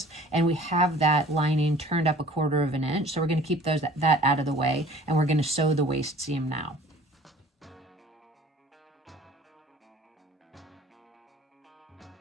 and we have that lining turned up 1/4 of an inch. So we're going to keep that out of the way, and we're going to sew the waist seam now.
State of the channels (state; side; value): normal; both; correlation 0.49